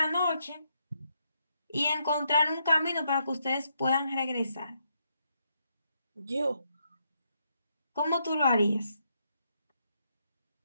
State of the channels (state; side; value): inverted; both; correlation -0.78